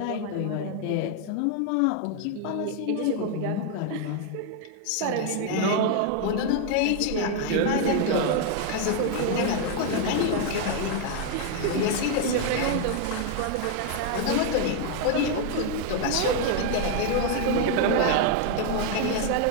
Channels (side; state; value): both; different; correlation 0.00